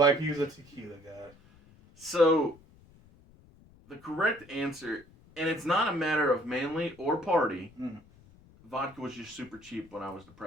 he was a tequila guy. So the correct answer, and it's not a matter of manly or party. Mm. Vodka was just super cheap when I was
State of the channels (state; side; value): noise; left; rumble, 26 dB below the sound